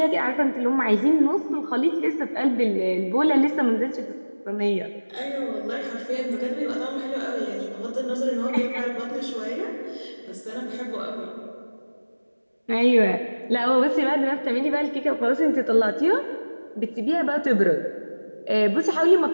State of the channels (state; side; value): inverted; both; correlation -1.00